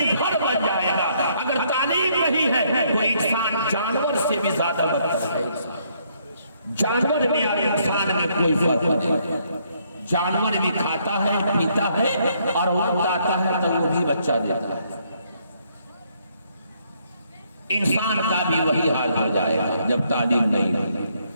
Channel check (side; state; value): both; inverted; correlation -0.70